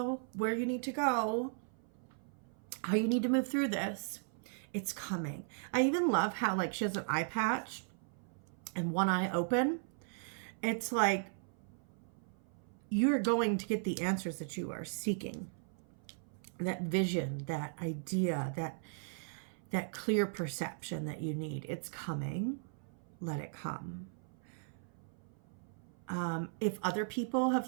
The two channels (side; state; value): left; silent; 53 dB below the other